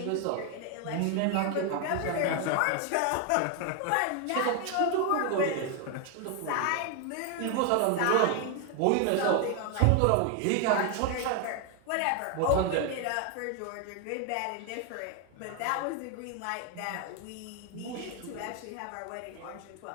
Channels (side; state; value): both; different; correlation 0.00